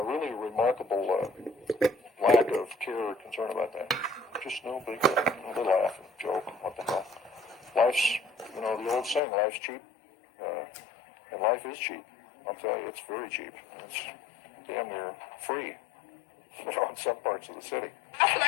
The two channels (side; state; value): right; drops out; at 9.2 s